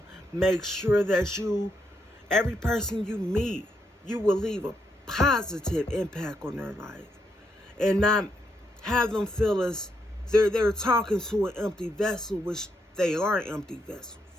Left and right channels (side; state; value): both; normal; correlation 0.79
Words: make sure that every person you meet, you will leave a positive impact on their life, and not have them feel as they're talking to an empty vessel, which they are empty vessels.